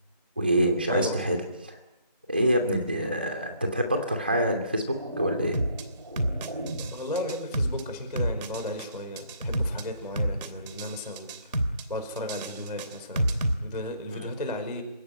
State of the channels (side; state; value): both; inverted; correlation -0.64